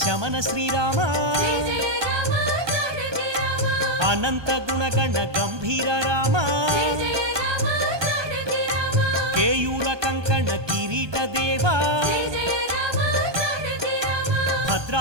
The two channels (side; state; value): left; late; 1.2 ms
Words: శమన శ్రీరామ అనంత గుణగణ గంభీర రామ కేయూర కంకణ కిరీట దేవా